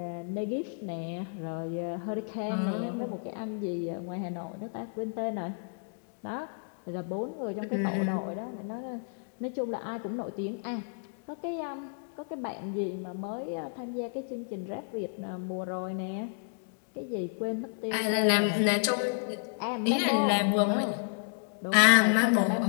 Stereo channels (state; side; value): silent; right; digital silence